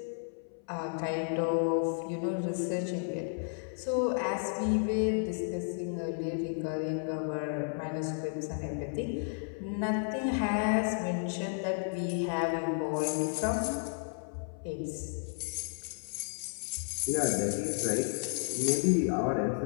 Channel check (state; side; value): silent; right; 56 dB below the other